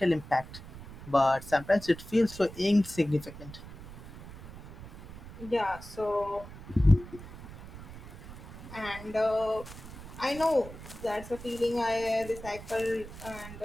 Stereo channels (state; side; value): noise; right; rumble, 14 dB below the sound